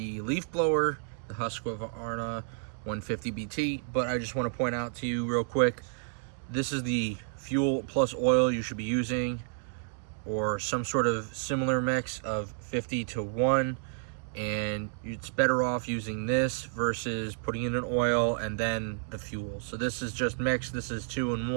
leaf blower, the Husqvarna 150BT. But I just want to point out to you real quick, this is the fuel plus oil you should be using, or some sort of similar mix of 50 to 1. And it's better off using this versus putting in an oil and then the fuel. So this is just mixed. This is 2 in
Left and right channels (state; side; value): silent; left; digital silence